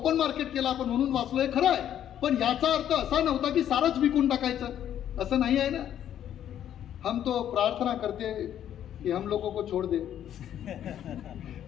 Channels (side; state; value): right; quieter; 10.5 dB